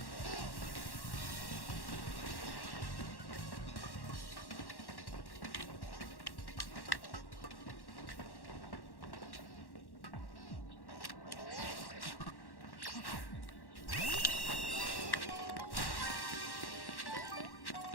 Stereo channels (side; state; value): right; late; 1.1 ms